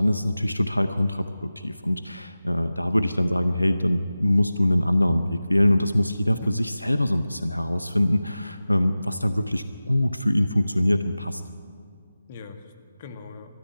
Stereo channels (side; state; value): both; inverted; correlation -0.95